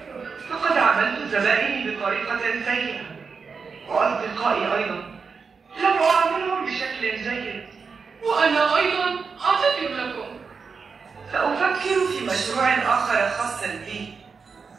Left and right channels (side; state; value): left; quieter; 5.3 dB